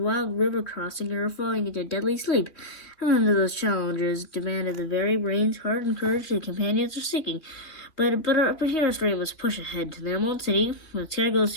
river crossing, or falling into deadly sleep. And none of those challenges demanded the very brains, heart, and courage the companions were seeking. But hero's dream was push ahead to the Emerald City, where the sky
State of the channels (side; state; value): right; late; 3.0 ms